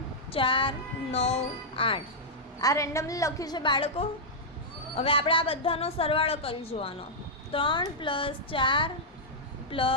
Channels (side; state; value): both; normal; correlation -0.08